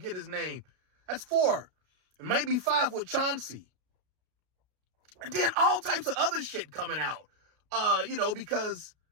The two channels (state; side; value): late; left; 33 ms